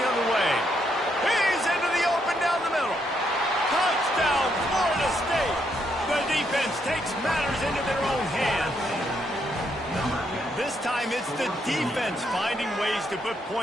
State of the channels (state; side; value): normal; both; correlation 0.76